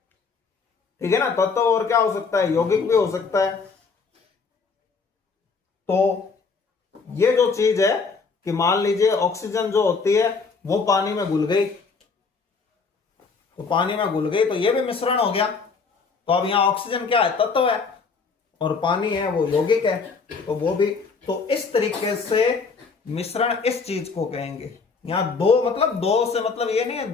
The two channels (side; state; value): right; quieter; 4.8 dB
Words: ठीक है ना, तत्व और क्या हो सकता है, यौगिक भी हो सकता है। तो ये जो चीज है कि मान लीजिए ऑक्सीजन जो होती है वो पानी में घुल गई, तो पानी में घुल गई तो ये भी मिश्रण हो गया। तो अब यहां ऑक्सीजन क्या है, तत्व है, और पानी है वो यौगिक है, तो वो भी। तो इस तरीके से मिश्रण इस चीज को कहेंगे। यहां दो मतलब दो से मतलब ये नहीं है